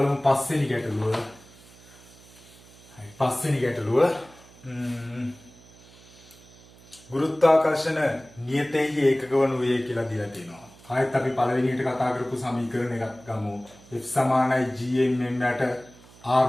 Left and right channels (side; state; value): right; noise; hum, 24 dB below the sound